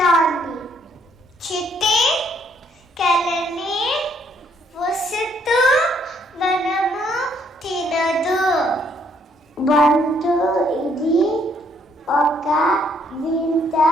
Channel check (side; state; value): both; normal; correlation 0.68